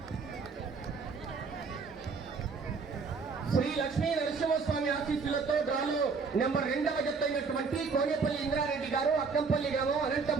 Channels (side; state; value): left; quieter; 4.9 dB